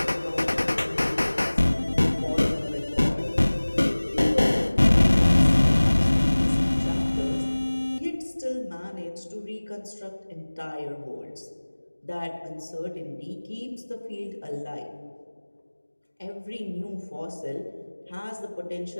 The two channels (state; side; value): inverted; both; correlation -1.00